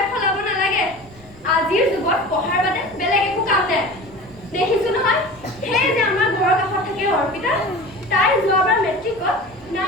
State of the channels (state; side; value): noise; left; rumble, 25 dB below the sound